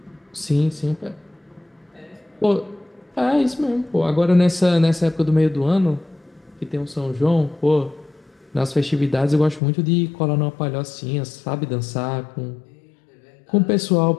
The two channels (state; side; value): drops out; right; at 9.6 s